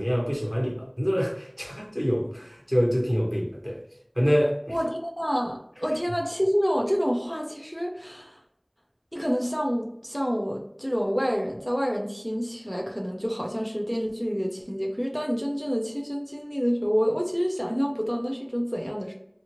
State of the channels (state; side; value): identical; both; correlation 1.00